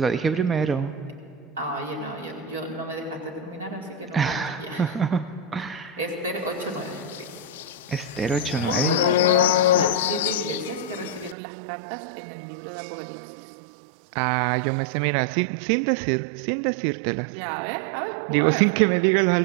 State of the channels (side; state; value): left; drops out; at 11.4 s